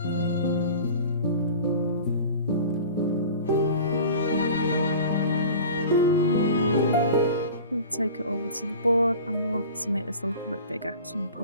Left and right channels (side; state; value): both; inverted; correlation -0.39